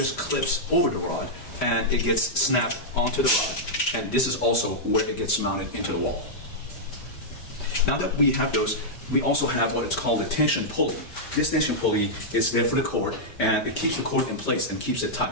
clips over the rod, and it gets snapped onto the rod, and this is also where it gets mounted into the wall. Now that we have those, we also have what is called a tension pulley. This tension pulley is there for the cord, and it keeps the cord in place and keeps it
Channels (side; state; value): right; late; 5.1 ms